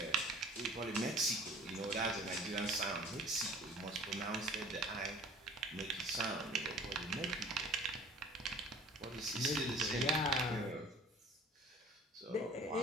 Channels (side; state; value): both; normal; correlation 0.49